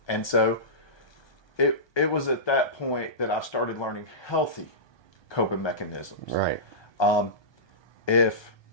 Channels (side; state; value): right; late; 1.2 ms